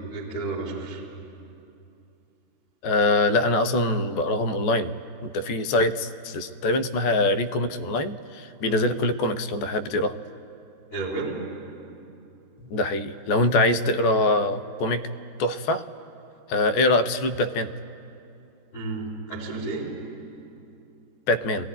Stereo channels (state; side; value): late; right; 14 ms